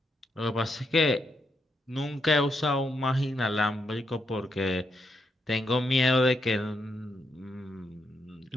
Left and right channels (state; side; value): normal; both; correlation 0.80